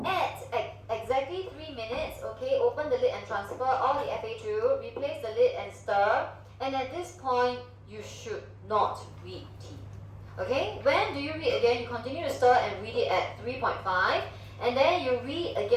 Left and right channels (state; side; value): identical; both; correlation 1.00